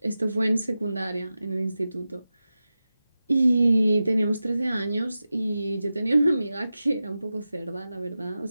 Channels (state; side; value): inverted; both; correlation -0.93